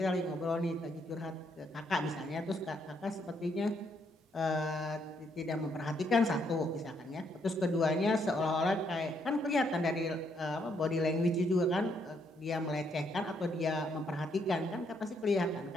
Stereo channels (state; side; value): normal; both; correlation 0.73